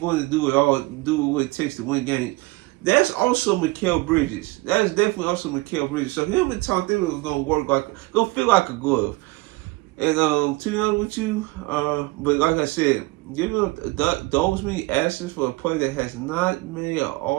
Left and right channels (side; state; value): left; quieter; 22.3 dB